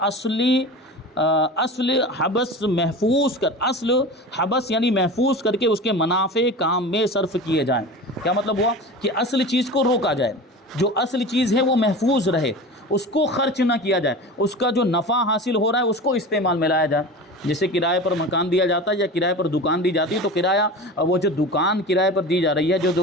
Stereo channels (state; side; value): normal; both; correlation 0.32